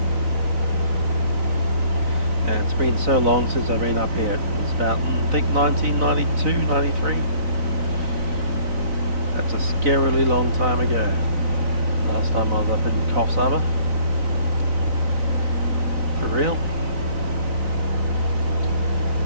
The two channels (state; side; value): late; left; 4.0 ms